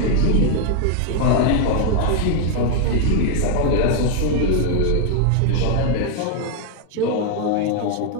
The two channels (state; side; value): different; both; correlation 0.00